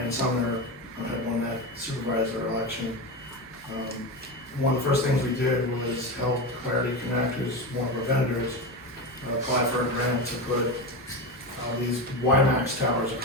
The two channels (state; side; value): normal; both; correlation 0.19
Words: Sumner had won that supervisor election, one of the first things we did was help Clarity Connect, who's one of our vendors, apply for a grant to put these WiMAX towers